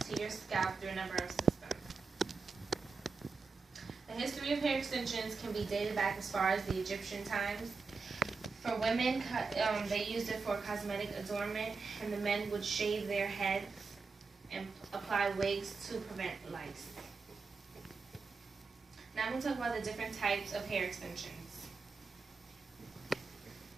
to your scalp through a number of systems. The history of hair extensions can be dated back as far as the Egyptian times. For women, they used it for cosmetic adornment, and the men would shave their heads and apply wigs to prevent lice. Now I'm going to talk about the different types of hair extensions.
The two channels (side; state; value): left; quieter; 4.5 dB